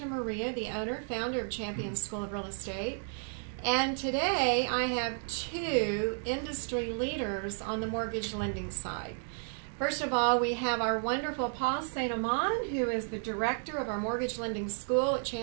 the owner, founder of Champion School of Real Estate. And today I have two industry leaders on the mortgage lending side. First of all, we have our wonderful Paul St. Amand, who is the director of our mortgage lending school at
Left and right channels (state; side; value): silent; left; 56 dB below the other